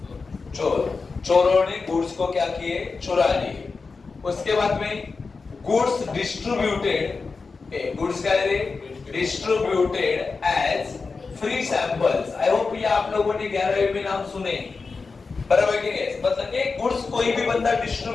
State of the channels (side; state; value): right; quieter; 4.4 dB